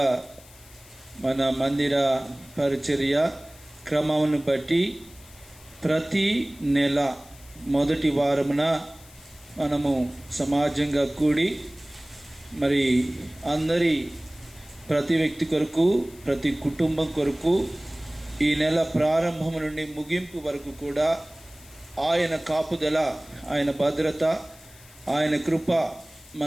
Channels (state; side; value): noise; left; hiss, 23 dB below the sound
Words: మన మందిర పరిచర్య క్రమమును బట్టి ప్రతి నెల మొదటి వారమున మనము సమాజంగా కూడి మరి అందరి ప్రతి వ్యక్తి కొరకు, ప్రతి కుటుంబం కొరకు ఈ నెల ప్రారంభం నుండి ముగింపు వరకు కూడా ఆయన కాపుదల, ఆయన భద్రత, ఆయన కృప